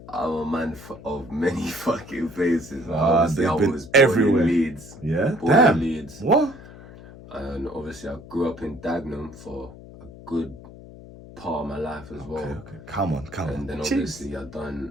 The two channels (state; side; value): noise; left; hum, 17 dB below the sound